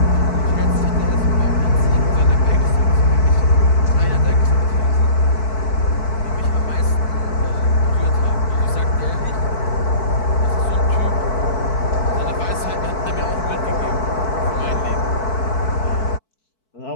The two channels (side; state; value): right; late; 4.6 ms